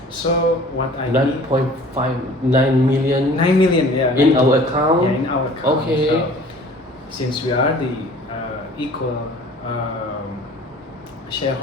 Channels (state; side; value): normal; both; correlation 0.48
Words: So what I need 9.59 million 9 million, yeah, in 9 our account? yeah, in our account. Okay. So, since we are the equal